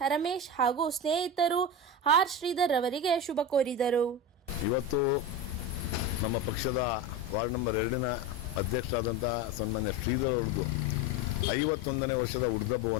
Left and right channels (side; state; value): both; normal; correlation 0.22